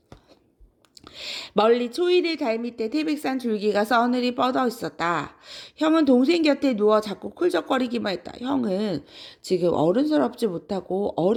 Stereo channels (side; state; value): both; identical; correlation 1.00